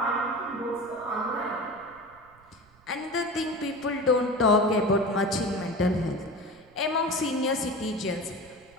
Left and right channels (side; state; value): right; noise; rumble, 29 dB below the sound